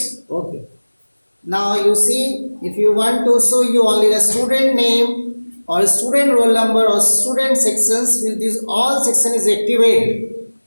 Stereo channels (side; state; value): both; inverted; correlation -1.00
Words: Okay. Now you see, if you want to show you only the student name or student roll number or student sections, with this all section is activated.